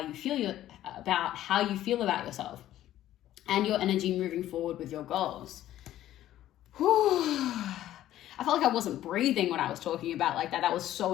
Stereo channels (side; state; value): right; quieter; 13.1 dB